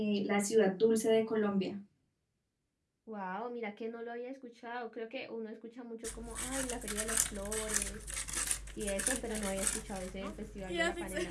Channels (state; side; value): identical; both; correlation 1.00